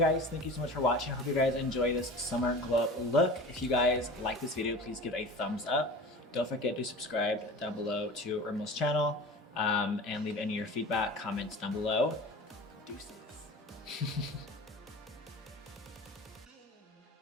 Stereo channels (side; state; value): both; normal; correlation 0.36